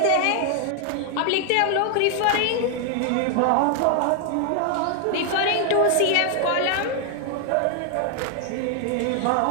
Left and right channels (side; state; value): both; different; correlation 0.00